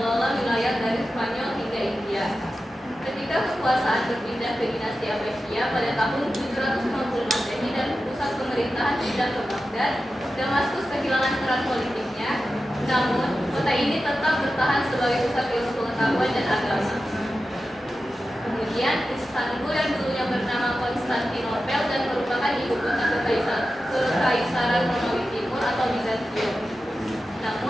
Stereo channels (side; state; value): both; normal; correlation 0.92